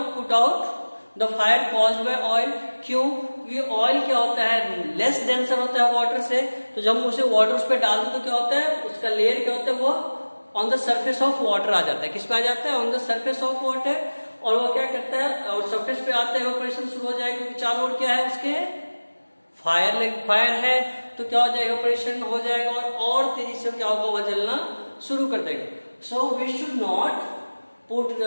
put out the fire caused by oil. क्यों, ये ऑयल क्या होता है, लेस डेंसर होता है वाटर से, तो जब हम उसे वाटर उस पर डाल दो तो क्या होता है, उसका लेयर क्या होता है, वो on the surface of water आ जाता है। किस पे आ जाता है, on the surface of water. और वो क्या करता है, और सरफेस पे आता है, इवेपोरेशन शुरू हो जाएगा, क्योंकि चारों ओर क्या है उसके फायर है, तो क्या हो जाएगा, इवेपोरेशन हो जाएगा और तेजी से क्या होगा, वो जलना शुरू कर देगा। So we should not put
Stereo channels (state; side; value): inverted; both; correlation -1.00